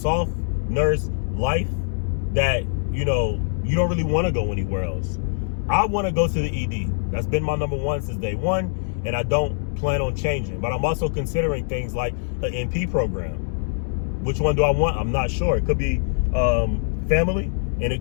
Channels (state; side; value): silent; right; digital silence